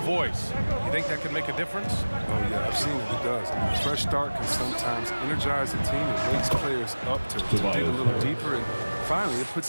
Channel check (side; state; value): both; inverted; correlation -1.00